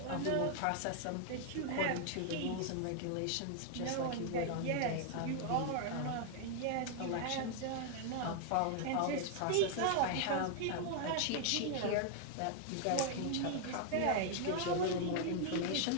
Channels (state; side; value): different; both; correlation 0.00